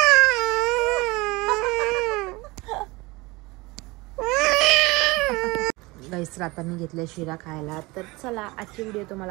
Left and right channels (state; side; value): quieter; left; 23.0 dB